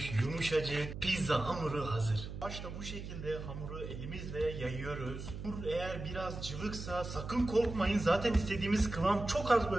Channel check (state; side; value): noise; right; hum, 8 dB below the sound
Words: Yumuşacık. Pizza hamuru hazır. Başta bu şekilde hamuru elimizle yayıyoruz. Hamur eğer biraz cıvıksa sakın korkmayın. Zaten istediğimiz kıvam çok az